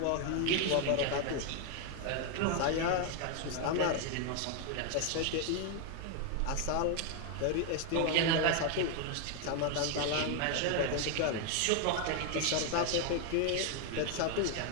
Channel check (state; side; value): different; both; correlation 0.01